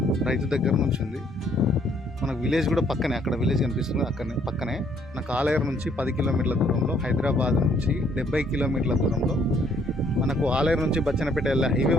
రైతు దగ్గర నుంచి ఉంది. మనకు విలేజ్ కూడా పక్కనే, అక్కడ విలేజ్ కనిపిస్తుంది పక్కనే. మనకు ఆలయం నుంచి 10 కిలోమీటర్ల దూరంలో, హైదరాబాద్ నుంచి 70 కిలోమీటర్ల దూరంలో, మనకు ఆలయం నుంచి బచ్చన్నపేట వెళ్ళే హైవే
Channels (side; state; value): both; normal; correlation 0.66